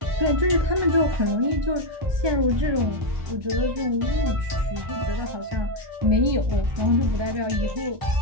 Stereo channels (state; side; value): late; left; 1.2 ms